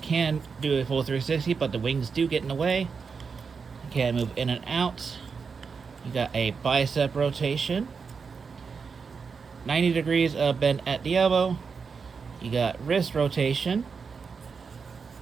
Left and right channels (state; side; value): quieter; left; 5.5 dB